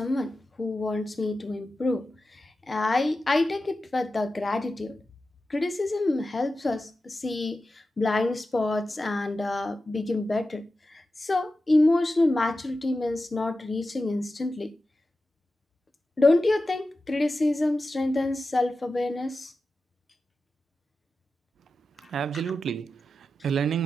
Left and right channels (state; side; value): normal; both; correlation 0.93